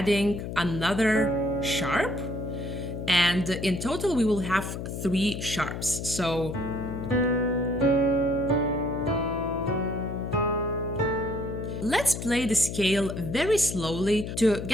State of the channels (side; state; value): left; noise; hum, 6 dB below the sound